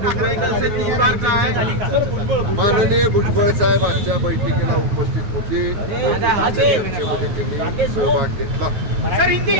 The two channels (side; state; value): left; late; 9.4 ms